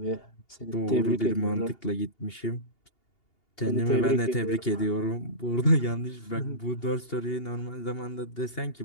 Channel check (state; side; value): late; right; 2.8 ms